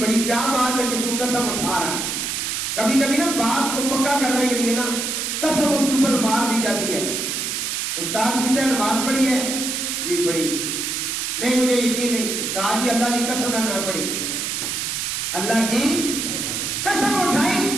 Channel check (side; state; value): right; noise; hiss, 2 dB below the sound